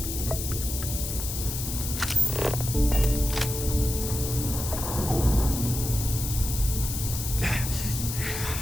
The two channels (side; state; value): left; noise; hiss, 5 dB below the sound